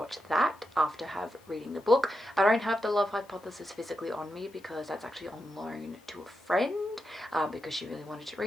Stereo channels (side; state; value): left; noise; hiss, 29 dB below the sound